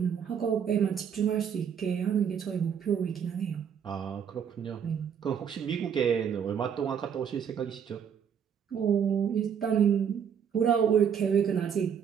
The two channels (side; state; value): left; quieter; 7.9 dB